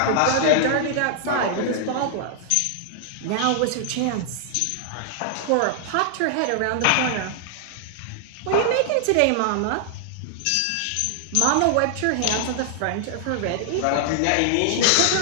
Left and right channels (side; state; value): both; different; correlation -0.01